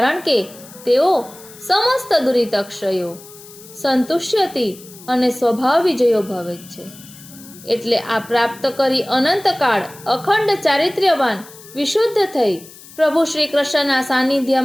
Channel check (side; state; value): left; noise; hiss, 20 dB below the sound